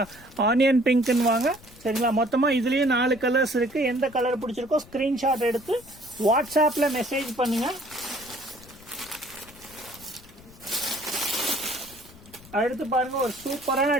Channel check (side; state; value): left; noise; rumble, 22 dB below the sound